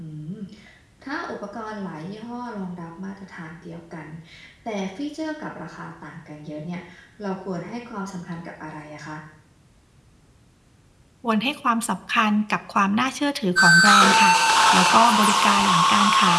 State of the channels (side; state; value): both; identical; correlation 1.00